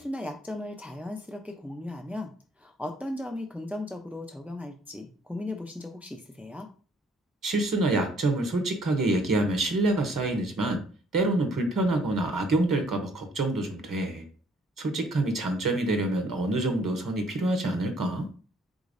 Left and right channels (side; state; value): both; normal; correlation 0.63